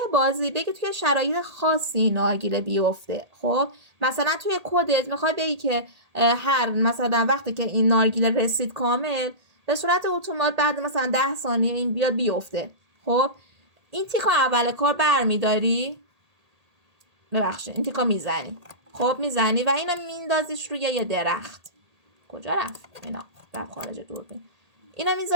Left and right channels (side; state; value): left; late; 1.8 ms